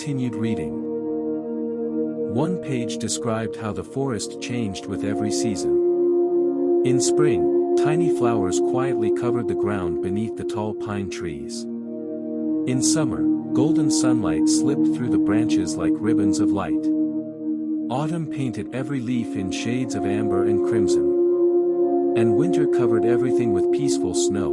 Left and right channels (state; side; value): identical; both; correlation 1.00